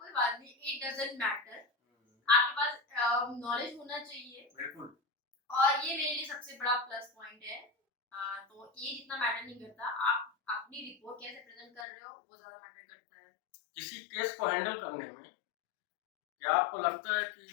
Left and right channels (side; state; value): right; drops out; at 11.9 s